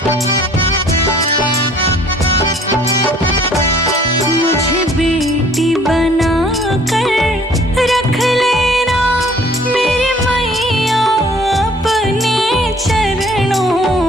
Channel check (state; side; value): normal; both; correlation 0.56